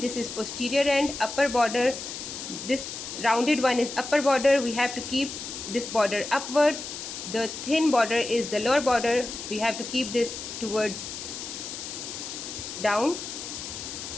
this is posterior end, upper border, this rounded one is upper border, we have to keep this border upwards. The thin border is the lower border, we have to keep this towards down.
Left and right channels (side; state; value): left; noise; hiss, 8 dB below the sound